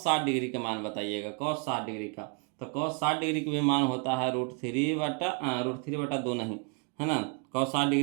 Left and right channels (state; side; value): quieter; left; 32.6 dB